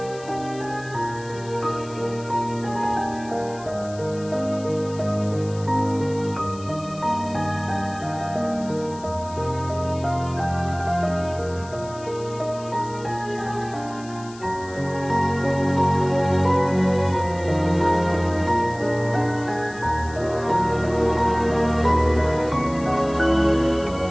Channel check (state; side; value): noise; left; hiss, 20 dB below the sound